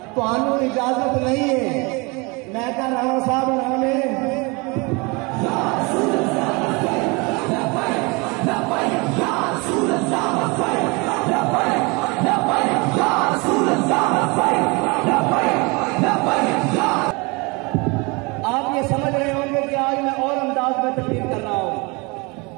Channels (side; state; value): left; quieter; 27.8 dB